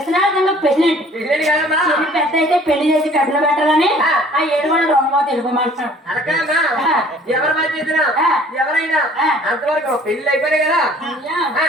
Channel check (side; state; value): both; normal; correlation 0.53